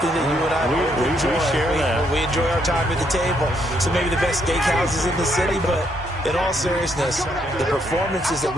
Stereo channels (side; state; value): both; normal; correlation 0.73